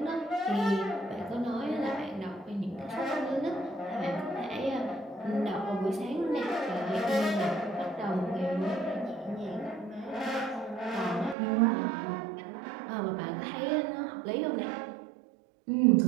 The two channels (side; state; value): left; drops out; at 11.4 s